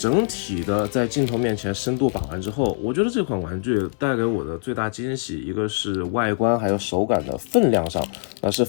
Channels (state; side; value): silent; right; 63 dB below the other